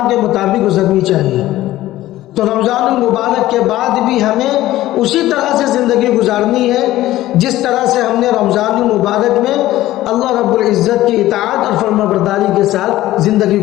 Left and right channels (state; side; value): quieter; right; 15.4 dB